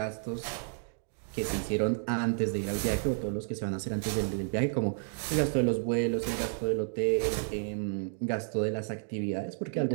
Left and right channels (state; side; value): silent; left; digital silence